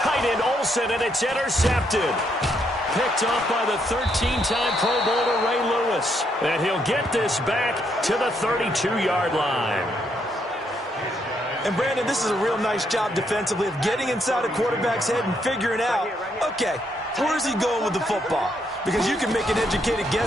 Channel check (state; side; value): normal; both; correlation 0.75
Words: end, Olsen, and it's intercepted. Picked off by the 13-time Pro Bowler Ray Lewis. And he'll get this back to the 32-yard line. And, Brandon, this is a real nice job defensively of getting inside a quarterback's head and figuring out, okay, where's he going with the football? Because you can make an educated